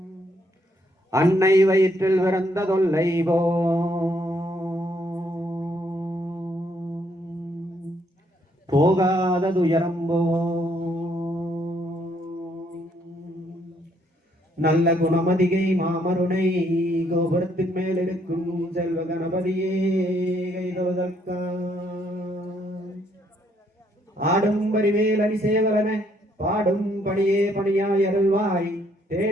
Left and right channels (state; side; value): normal; both; correlation 0.70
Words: அன்னை வயிற்றில் பிறந்த தொல்லை போகாத துயரம் நல்ல குணமதிகை மாமருணை கோபுரத்தின் மேல் இருக்கும் செல்வ கணபதியே கைதொழுதற்கா ஆடும் பரிவேல் அணி சேவலன பாடும் பணியே பணியாய் அருள்வாய்